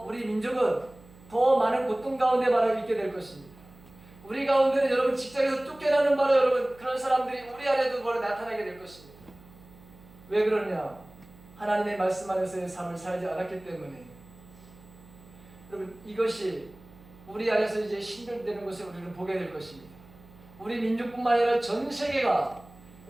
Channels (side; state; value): right; noise; hum, 23 dB below the sound